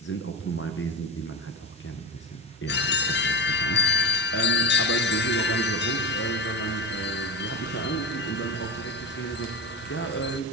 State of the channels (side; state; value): both; normal; correlation 0.22